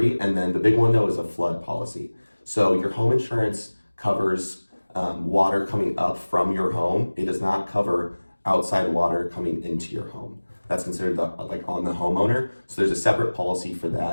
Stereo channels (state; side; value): inverted; both; correlation -1.00